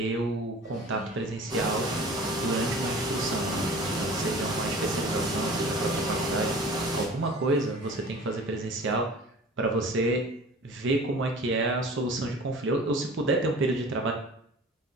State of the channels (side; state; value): both; normal; correlation 0.43